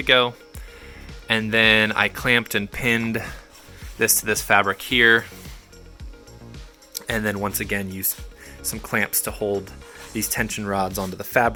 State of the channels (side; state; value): both; identical; correlation 1.00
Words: go. And then I clamped and pinned this to this fabric here. And then once again used some clamps to hold these tension rods onto the